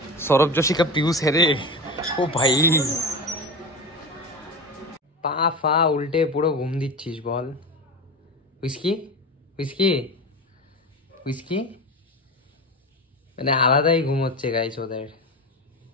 সৌরভ जोशी का पीयूष है रे। ও ভাই, পা ফা উল্টে পুরো ঘুম দিচ্ছিস বল। উইস্কি উইস্কি উইস্কি, মানে আলাদাই ঘুম হচ্ছে গাইস ওদের।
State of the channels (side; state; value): both; normal; correlation 0.26